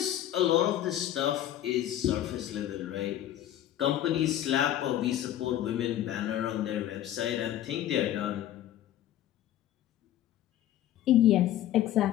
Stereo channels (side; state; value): right; quieter; 12.2 dB